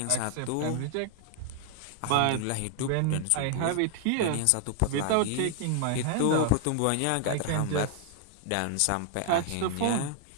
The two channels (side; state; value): both; different; correlation 0.00